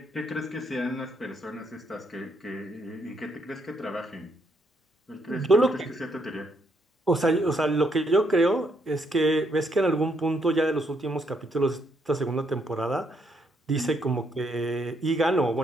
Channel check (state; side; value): normal; both; correlation 0.74